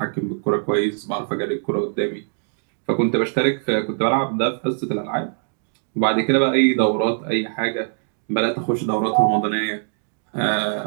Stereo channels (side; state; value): left; silent; digital silence